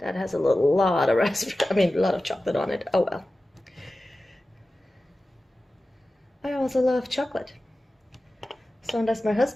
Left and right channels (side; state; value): both; normal; correlation 0.95